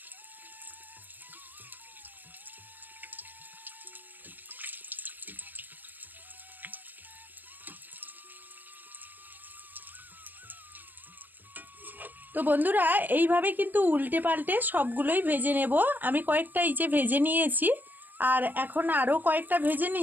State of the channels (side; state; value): left; late; 0.087 ms